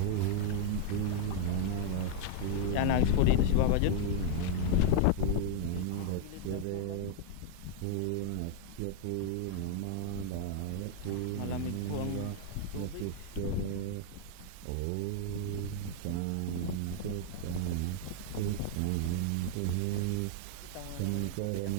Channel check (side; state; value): both; different; correlation 0.00